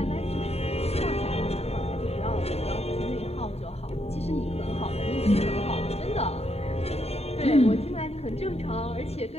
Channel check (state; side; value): late; right; 0.30 ms